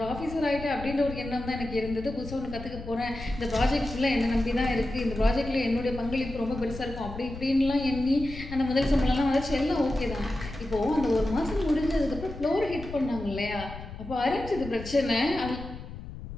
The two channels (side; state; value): left; noise; rumble, 11 dB below the sound